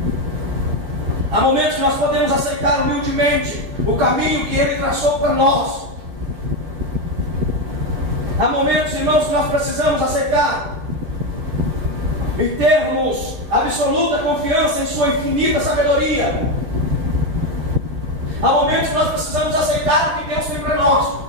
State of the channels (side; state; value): left; late; 10 ms